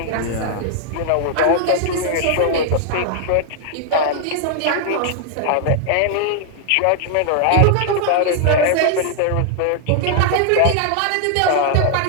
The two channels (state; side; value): different; both; correlation -0.01